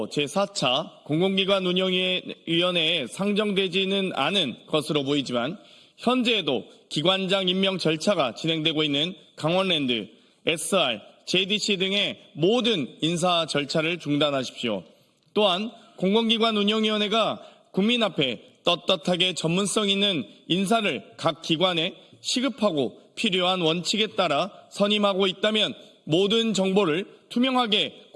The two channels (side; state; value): both; identical; correlation 1.00